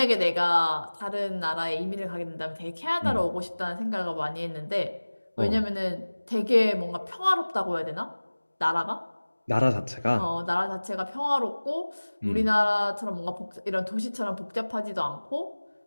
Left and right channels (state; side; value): inverted; both; correlation -1.00